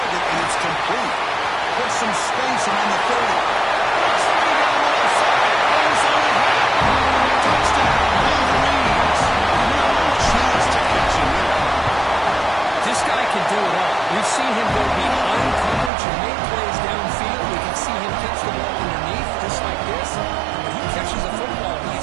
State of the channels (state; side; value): drops out; left; at 15.9 s